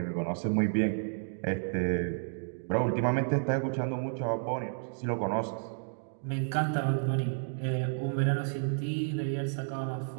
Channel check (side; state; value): left; silent; digital silence